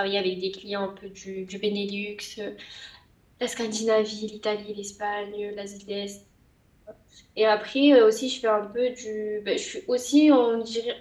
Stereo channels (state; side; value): identical; both; correlation 1.00